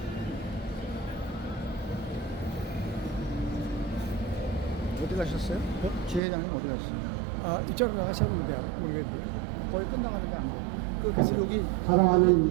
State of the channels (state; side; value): drops out; left; at 6.2 s